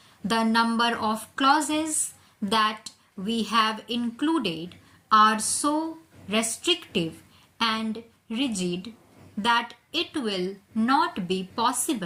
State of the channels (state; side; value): identical; both; correlation 1.00